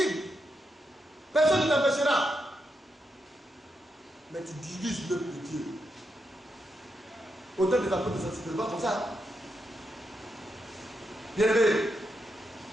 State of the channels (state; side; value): normal; both; correlation 0.84